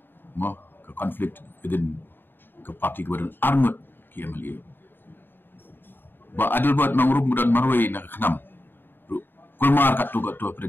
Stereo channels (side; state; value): right; late; 0.096 ms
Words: mo ke conflict within ke parti kebadan armut ki MLA. Ba adil buat nang rum dan marwai nak kenam. Kulmar kat tu pada